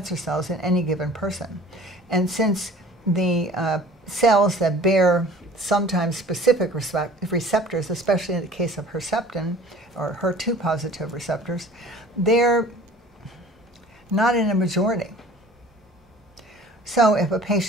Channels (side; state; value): both; normal; correlation 0.47